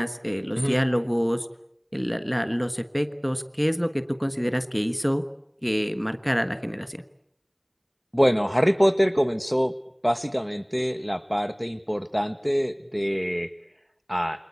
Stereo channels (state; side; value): identical; both; correlation 1.00